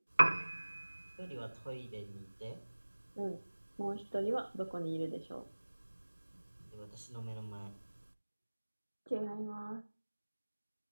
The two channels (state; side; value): inverted; both; correlation -1.00